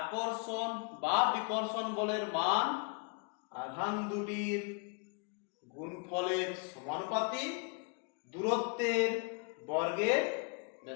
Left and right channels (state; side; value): quieter; right; 35.7 dB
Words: বা বিকর্ষণ বলের মান আধান দুটির গুণফলের সমানুপাতিক, দূরত্বের বর্গের